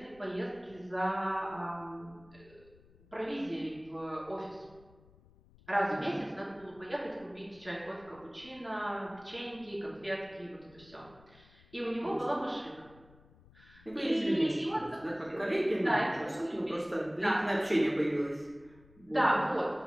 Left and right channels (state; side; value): noise; left; rumble, 25 dB below the sound